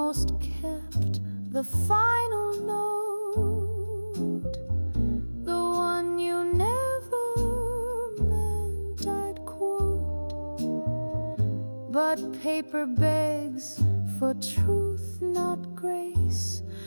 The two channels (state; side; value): inverted; both; correlation -1.00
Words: kept the final note, the one you never meant I'd quote. But paper begs for truth, not grace,